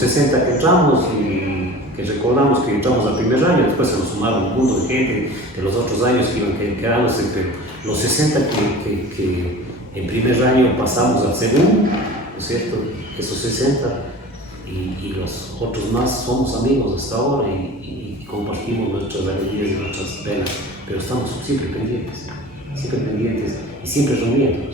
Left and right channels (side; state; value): both; normal; correlation 0.38